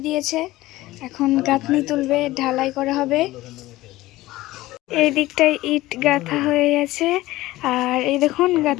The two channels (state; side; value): quieter; right; 17.6 dB